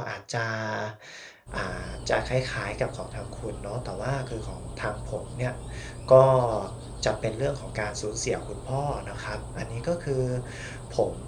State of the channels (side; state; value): both; identical; correlation 1.00